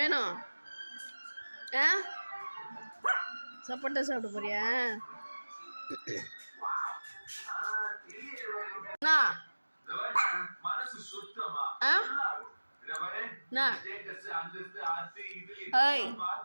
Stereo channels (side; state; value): both; inverted; correlation -1.00